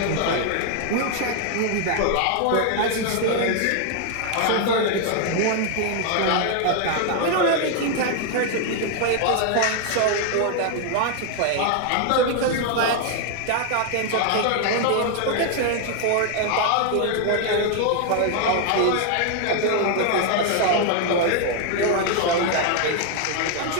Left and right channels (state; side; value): different; both; correlation 0.00